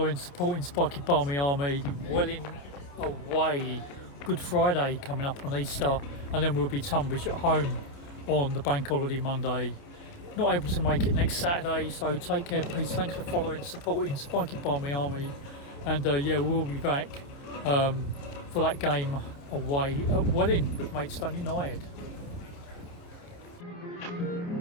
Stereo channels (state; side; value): late; right; 28 ms